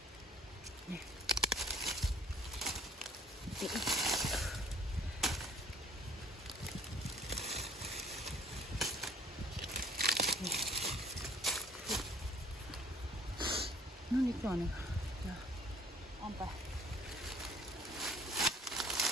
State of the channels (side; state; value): both; normal; correlation 0.55